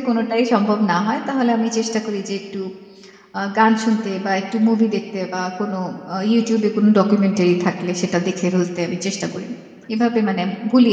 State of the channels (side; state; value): both; identical; correlation 1.00